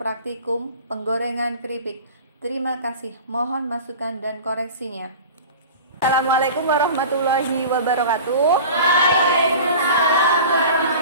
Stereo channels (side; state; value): both; inverted; correlation -0.37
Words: penggorengan keripik. Terima kasih, mohon masukan dan koreksinya. Assalamualaikum warahmatullahi wabarakatuh. Waalaikumsalam